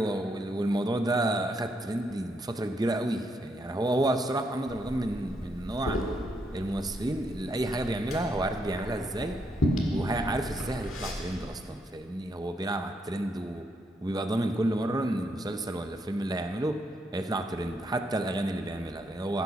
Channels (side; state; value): both; normal; correlation 0.77